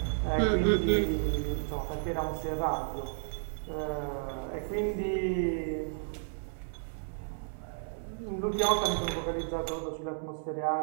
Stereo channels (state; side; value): silent; left; 56 dB below the other